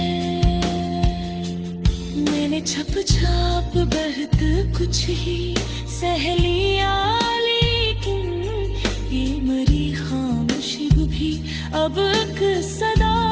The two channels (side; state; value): both; identical; correlation 1.00